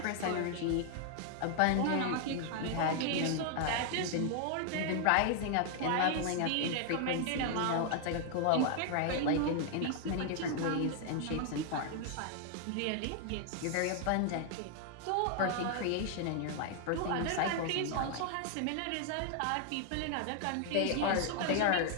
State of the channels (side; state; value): both; different; correlation 0.00